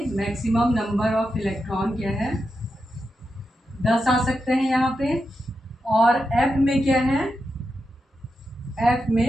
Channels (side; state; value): both; normal; correlation 0.87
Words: मैक्सिमम नंबर ऑफ इलेक्ट्रॉन क्या है? 10 आ सकते हैं यहाँ पे। और एफ में क्या है? एफ